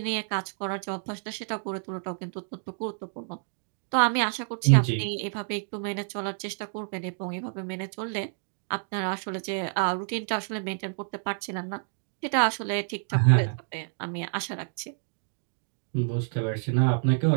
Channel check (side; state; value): left; silent; digital silence